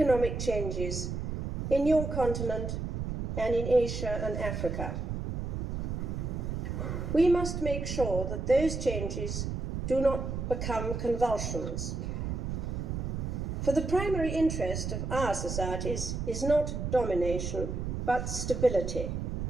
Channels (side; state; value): right; noise; rumble, 3 dB below the sound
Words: changes in your continent and in Asia and Africa. We must make sure that those changes do not become convulsions. For the primary interest of our societies is not domination, but stability.